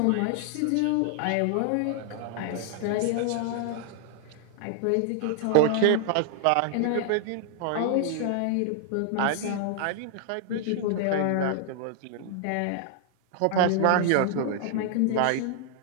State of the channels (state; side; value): different; both; correlation 0.00